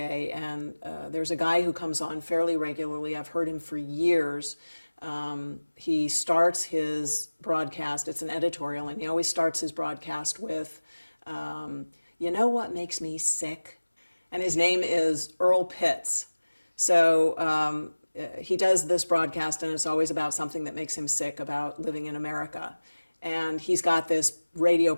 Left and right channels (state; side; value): inverted; both; correlation -1.00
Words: and there's a guy who comes on fairly regularly. I've heard him for years. He starts his broadcast, it's an editorial, and he always starts his broadcast with, you know what makes me sick? And his name is Earl Pitts. So he does this broadcast, and it's always about something that makes him sick about living in America. And he's got this radio